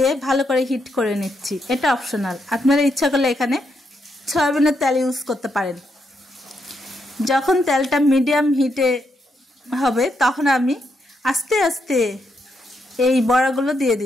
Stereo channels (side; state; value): both; normal; correlation 0.80